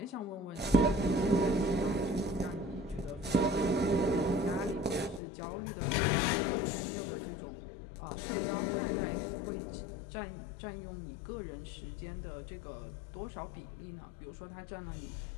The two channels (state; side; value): drops out; right; at 5.2 s